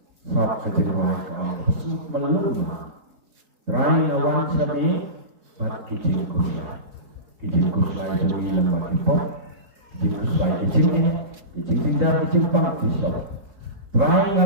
Saat kecil wani kalau melulu. Rai awan seni bat kecil kusia. Kecil kusia itu ni lembaga pop. Kecil kusia kecil tidak kecil pang kisah. Rai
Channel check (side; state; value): left; late; 4.7 ms